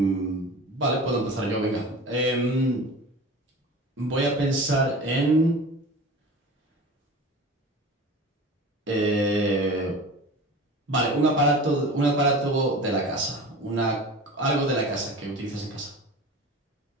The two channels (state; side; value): normal; both; correlation 0.36